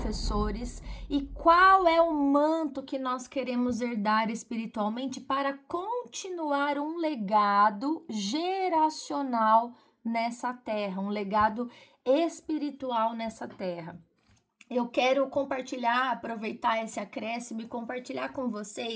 e qual é o manto que nós queremos herdar espiritualmente para continuar um legado geracional nessa terra, um legado espiritual nessa terra. Eu quero compartilhar, aproveitar esse acréscimo e compartilhar com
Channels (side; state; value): both; identical; correlation 1.00